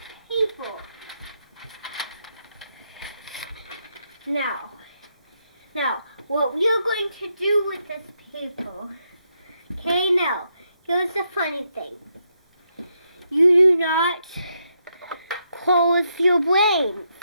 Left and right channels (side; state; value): both; inverted; correlation -0.80